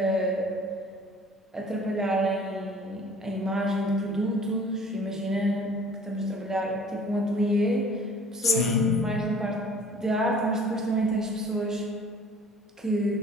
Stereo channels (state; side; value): normal; both; correlation 0.50